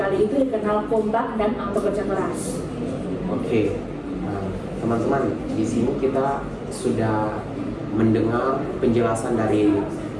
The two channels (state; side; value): identical; both; correlation 1.00